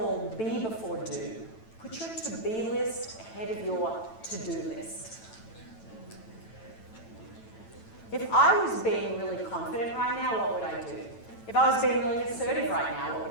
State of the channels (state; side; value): late; right; 9.0 ms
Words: be before do. Put your to-be list ahead of your to-do list. If I was being really confident right now, what would I do? If I was being really assertive right now, what would